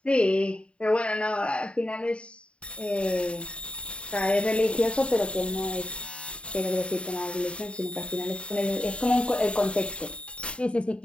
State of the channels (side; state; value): right; late; 0.058 ms